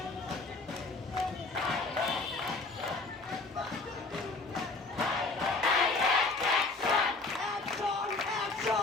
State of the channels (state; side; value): quieter; right; 3.6 dB